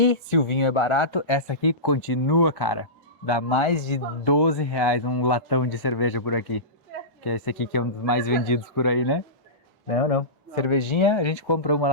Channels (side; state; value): both; normal; correlation -0.20